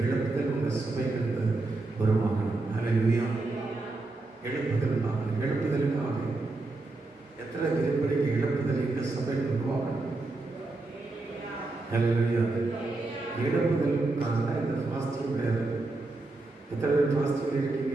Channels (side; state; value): left; quieter; 3.2 dB